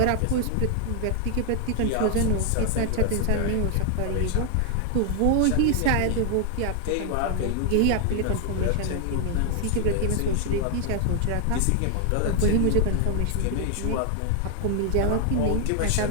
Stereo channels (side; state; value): both; different; correlation 0.00